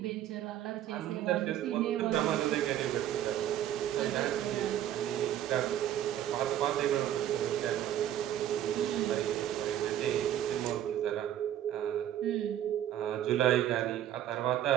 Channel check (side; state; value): left; quieter; 11.5 dB